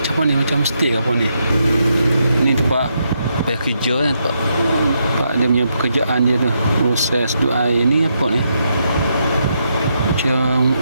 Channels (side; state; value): both; inverted; correlation -0.80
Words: apa ni? Macam stay apa ni? Ni tempat payah kerja kan, tempat dia punya pekerjaan dia tu. Proses dua air ni apa ni? Macam